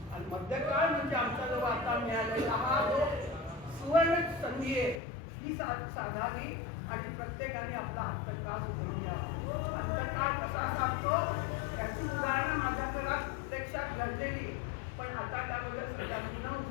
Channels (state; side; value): drops out; right; at 5.0 s